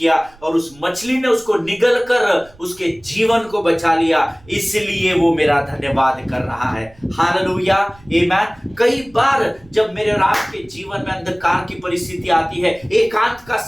और उस मछली ने उसको निगल कर उसके जीवन को बचा लिया, इसलिए वो मेरा धन्यवाद कर रहा है। हालेलुया, आमेन। कई बार जब मेरे और आपके जीवन में अंधकार की परिस्थिति आती है, एकांत का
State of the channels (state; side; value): noise; right; rumble, 26 dB below the sound